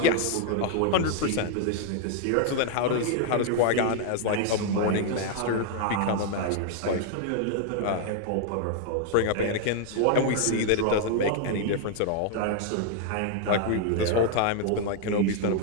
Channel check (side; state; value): both; different; correlation 0.00